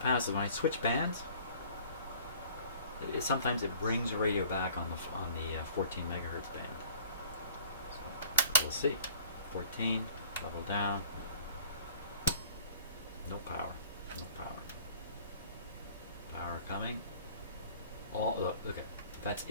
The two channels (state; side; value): inverted; both; correlation -0.50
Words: is when I switch bands, sometimes it brings the radio back on the 14 megahertz band. So we'll see. 14, level down. No power. No power. Power coming. Look, okay, that's